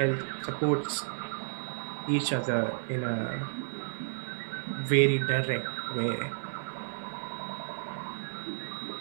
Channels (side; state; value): left; silent; digital silence